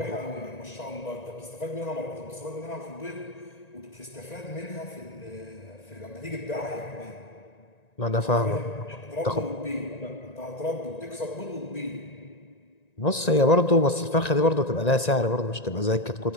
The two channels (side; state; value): right; late; 1.9 ms